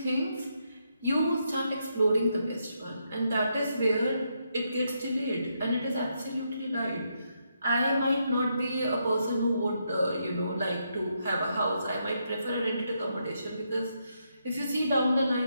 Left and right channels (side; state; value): both; inverted; correlation -0.80